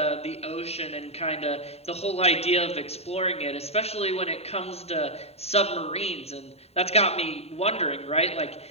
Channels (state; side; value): late; right; 0.30 ms